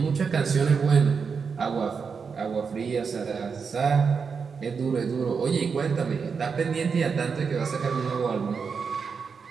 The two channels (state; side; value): quieter; left; 5.7 dB